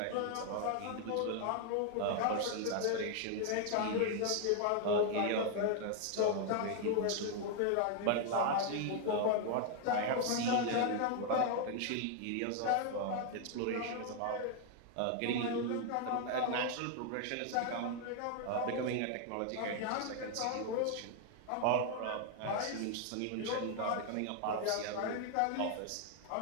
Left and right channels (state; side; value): different; both; correlation 0.00